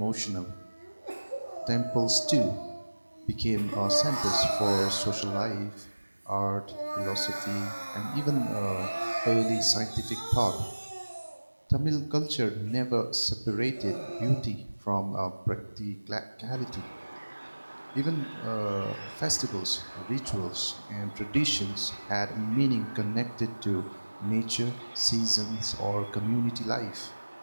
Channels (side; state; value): both; inverted; correlation -1.00